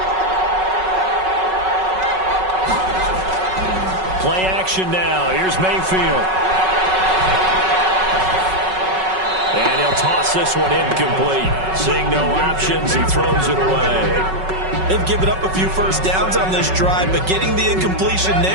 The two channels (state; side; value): late; left; 5.3 ms